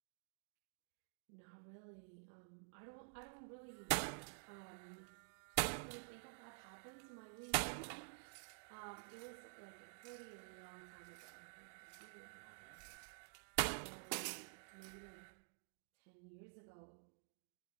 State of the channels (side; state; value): left; silent; digital silence